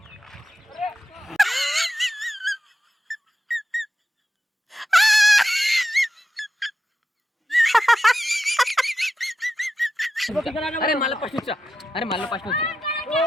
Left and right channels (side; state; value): both; normal; correlation 0.90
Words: అరే మళ్ళీ ఫస్ట్ వచ్చా అరే